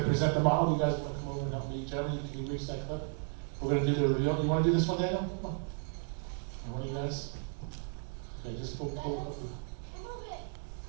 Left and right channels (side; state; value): left; silent; 55 dB below the other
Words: to present the model. You guys want to come over and help me? Jeremy, can you reach that clip? We're going to do the reveal. You want to do this one, Daniel? Come on. And one of you guys? Okay, just pull up.